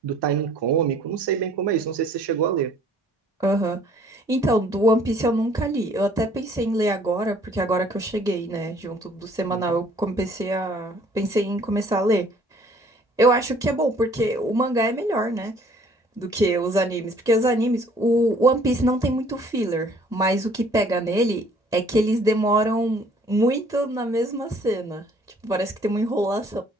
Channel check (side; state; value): both; normal; correlation 0.58